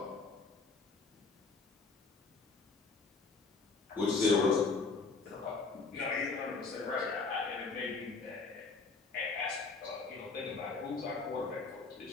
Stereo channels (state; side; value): quieter; right; 4.2 dB